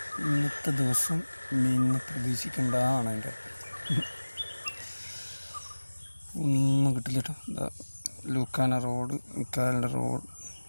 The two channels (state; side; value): inverted; both; correlation -1.00